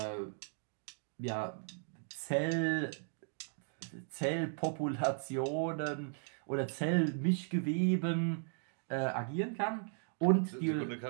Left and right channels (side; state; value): left; silent; 53 dB below the other